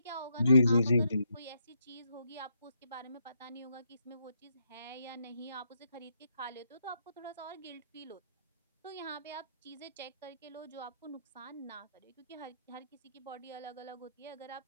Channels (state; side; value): inverted; both; correlation -0.78